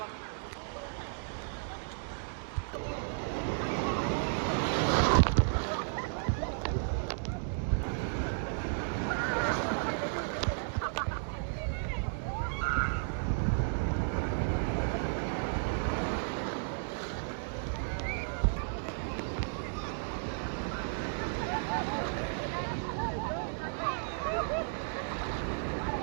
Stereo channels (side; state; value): left; silent; digital silence